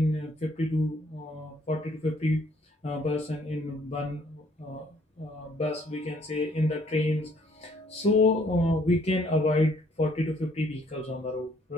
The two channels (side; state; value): both; normal; correlation 0.64